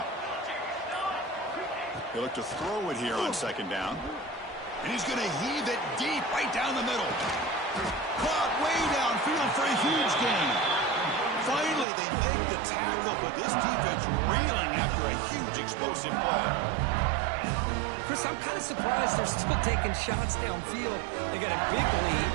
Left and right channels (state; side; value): drops out; left; at 11.9 s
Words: They look to throw it here on 2nd down. And he's going to heave it deep right down the middle. Caught way downfield for a huge gain. Finally, they make the tackle, but this defense reeling after a huge explosive play. Chris, I'm kind of surprised they're still taking shots downfield. They got a big